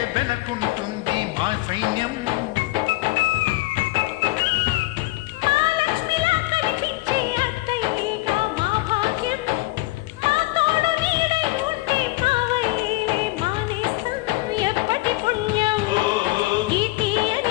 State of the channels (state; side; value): quieter; right; 20.3 dB